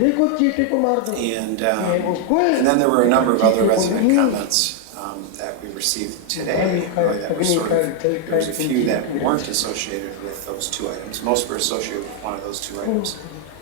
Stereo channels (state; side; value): different; both; correlation 0.00